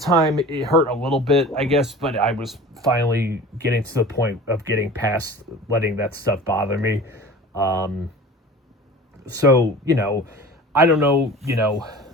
time, it hurt a little bit, I guess, but I was finally getting to the point of getting past letting that stuff bother me. So, I don't know,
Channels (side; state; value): both; normal; correlation 0.39